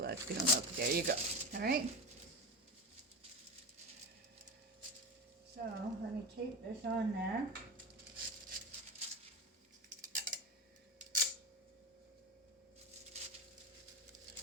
that's going to look. There you go. All right? So let me tape this on there.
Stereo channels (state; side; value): normal; both; correlation 0.19